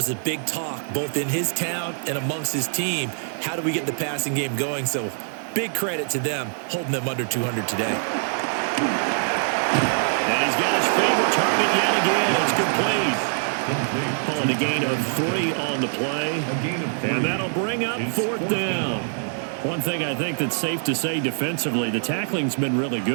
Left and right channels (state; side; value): silent; left; digital silence